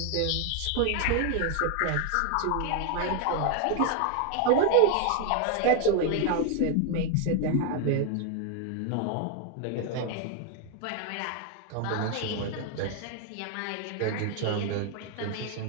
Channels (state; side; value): different; both; correlation 0.01